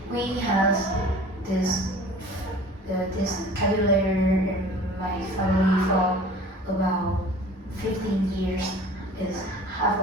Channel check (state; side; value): normal; both; correlation 0.45